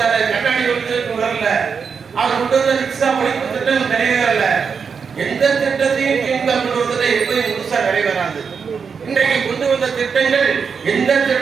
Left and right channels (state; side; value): quieter; left; 6.0 dB